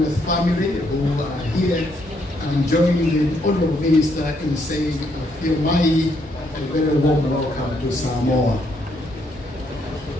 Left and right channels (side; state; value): both; normal; correlation 0.73